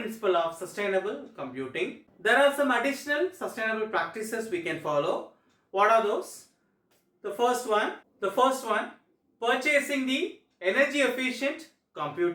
of sustainable computing. There are some additional sustainable practices we can follow. What are those? The first one, purchasing the energy efficient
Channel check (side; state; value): both; identical; correlation 1.00